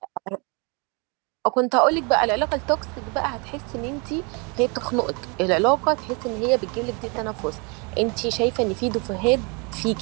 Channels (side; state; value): left; quieter; 32.0 dB